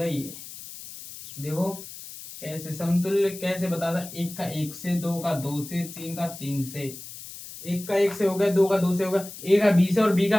ये। देखो कैसे समतुल्य कैसे बताता, 1 का 1 से, 2 का 2 से, 3 का 3 से, 1 का 1 से हो गया, 2 का 2 से हो गया, ए का 20 है और बी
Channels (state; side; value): noise; left; hiss, 13 dB below the sound